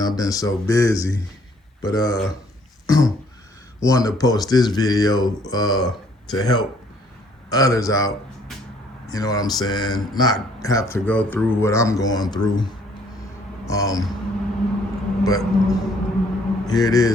I've been so busy. But wanted to post this video to help others out. You know what I'm saying? Not have to go through what I'm going through. But here it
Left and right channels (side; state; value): both; normal; correlation 0.62